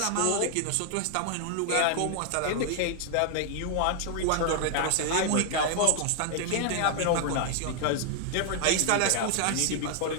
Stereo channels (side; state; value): both; different; correlation 0.00